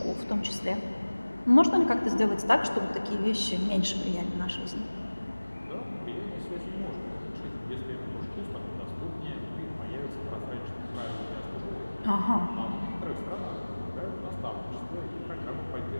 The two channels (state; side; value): inverted; both; correlation -1.00